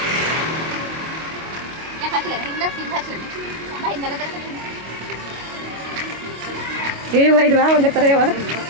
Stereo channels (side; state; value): left; late; 25 ms